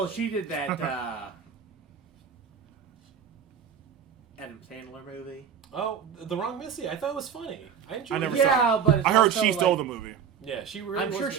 good. she did that Adam Sandler movie. Oh, The Wrong Missy. I thought it was funny. I enjoyed I never it. saw Yeah, but it's I heard also, she stole like, the movie. Yeah, she really I'm was sure good.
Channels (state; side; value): quieter; left; 7.6 dB